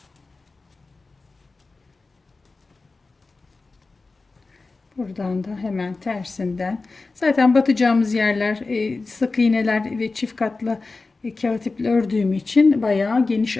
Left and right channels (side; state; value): right; quieter; 3.7 dB